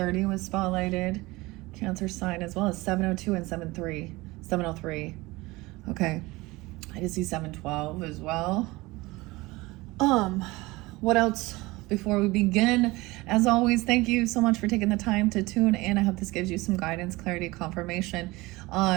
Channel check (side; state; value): left; quieter; 21.4 dB